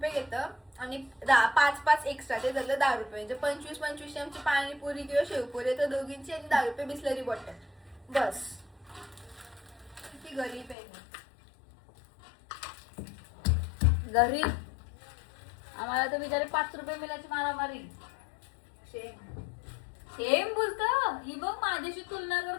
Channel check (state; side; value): drops out; right; at 10.8 s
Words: घेतं आणि 5 एक्स्ट्रा, ते झालं 10 रुपये. म्हणजे 25 आमची पाणीपुरी किंवा शेवपुरी तर दोघींची, आणि 10 रुपये बिस्लरी बॉटल. बस. किती गरीब आहे मी. गरीब. आम्हाला तर बिचारे 5 रुपये मिळायची मारामारी. सेम बोलतं ही बघ, माझ्याशी तुलना